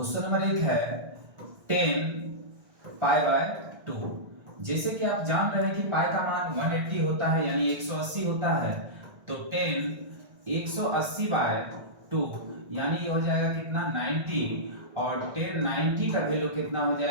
नंबर 1 है 10 पाई बाय 2। जैसे कि आप जान रहे हैं कि पाई का मान 180 होता है, यानी 180 होता है। तो 10 180 बाय 2 यानी ये हो जाएगा कितना 90। और 10 90 का वैल्यू कितना हो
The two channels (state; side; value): late; left; 1.6 ms